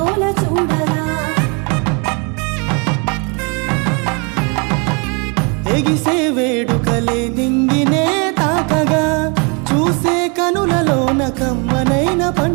చూడగా ఎగిసే వేడుకలే నింగినే తాకగా చూసే కనులలోన కమ్మనైన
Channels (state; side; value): quieter; left; 33.2 dB